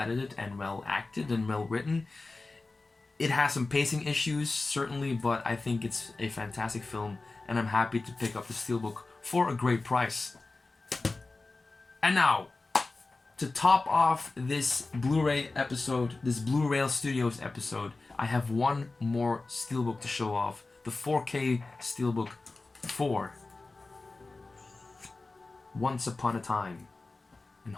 and well acted and well written. It has some pacing issues, certainly, but I think it's a fantastic film, and I'm happy to pick up the Steelbook for a great price. And now, to top off this Blu-ray episode, this Blureel Studios episode, I have one more Steelbook to show off. The 4K Steelbook for Once Upon a Time in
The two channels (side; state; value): right; quieter; 3.5 dB